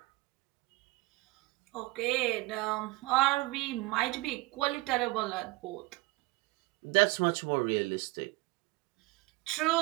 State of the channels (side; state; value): left; quieter; 21.9 dB